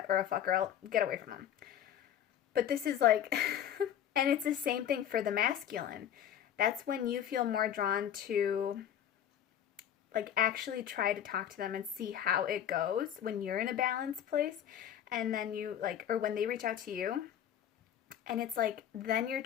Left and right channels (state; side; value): quieter; right; 10.1 dB